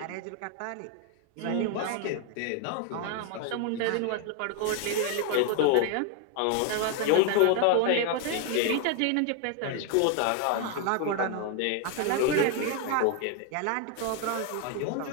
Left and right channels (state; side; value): different; both; correlation 0.01